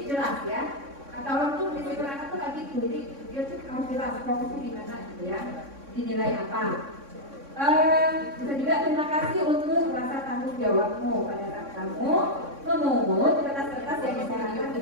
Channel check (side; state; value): left; late; 3.6 ms